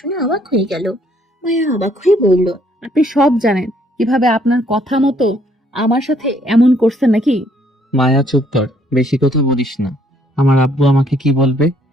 অবাক হয়ে গেল। মায়া অবাক হয়ে বলল, আপনি সব জানেন, কিভাবে আপনার কথা মতো আমার সাথে এমন করছেন নাকি? মায়া, চুপ কর, বেশি কথা বলিস না। আমার আব্বু আমাকে কি বলবে?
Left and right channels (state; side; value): normal; both; correlation 0.66